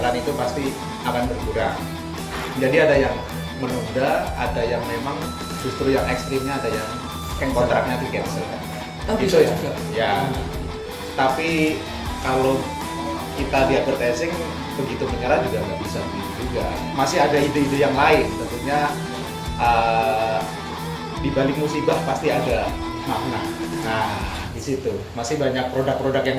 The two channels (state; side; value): identical; both; correlation 1.00